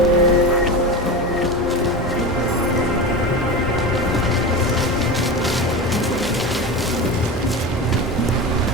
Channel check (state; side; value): normal; both; correlation 0.26